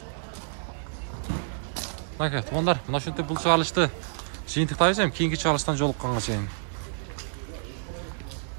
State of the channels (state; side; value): silent; left; digital silence